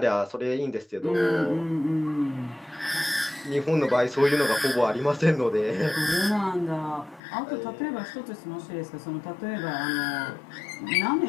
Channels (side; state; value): right; drops out; at 7.2 s